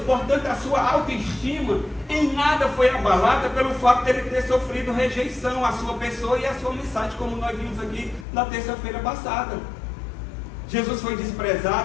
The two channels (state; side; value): drops out; right; at 8.2 s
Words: Portanto, a sua autoestima em nada foi abalada pelo fato de ele ter sofrido rejeição à sua pessoa e à sua mensagem, como nós vimos aqui na terça-feira passada. Jesus foi